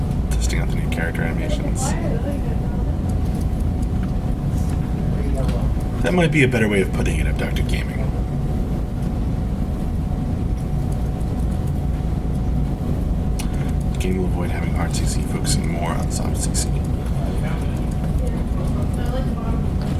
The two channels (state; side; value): identical; both; correlation 1.00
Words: Testing out the new character animations. That might be a better way of putting it, Abducted Gaming. The game will avoid having hard CC, focusing more on soft CC.